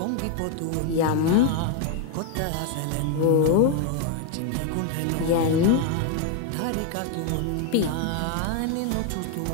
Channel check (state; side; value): different; both; correlation 0.01